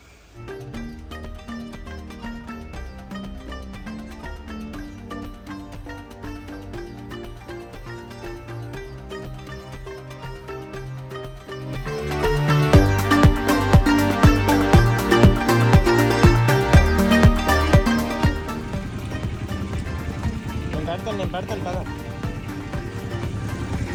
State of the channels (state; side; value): identical; both; correlation 1.00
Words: నేను పెడతాను కదా.